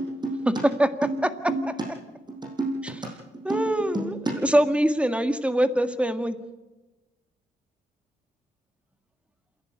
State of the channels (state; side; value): normal; both; correlation 0.89